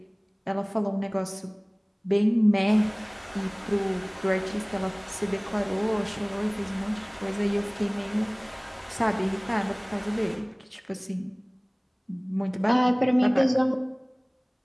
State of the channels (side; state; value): both; identical; correlation 1.00